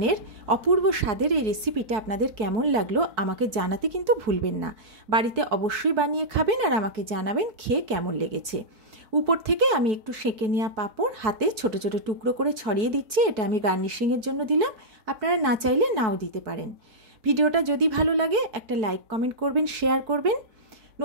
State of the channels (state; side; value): late; left; 4.6 ms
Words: অপূর্ব স্বাদের এই রেসিপিটা আপনাদের কেমন লাগলো আমাকে জানাতে কিন্তু ভুলবেন না। বাড়িতে অবশ্যই বানিয়ে খাবেন আর আমাকে জানাবেন খেয়ে কেমন লেগেছে। উপর থেকে আমি একটু সেঁকে নেওয়া পাঁপড় হাতে ছোট ছোট টুকরো করে ছড়িয়ে দিচ্ছি। এটা আমি গার্নিশিংয়ের জন্য দিলাম, আপনারা না চাইলে নাও দিতে পারেন। ভিডিওটা যদি ভালো লাগে একটা লাইক কমেন্ট করবেন, শেয়ার করবেন।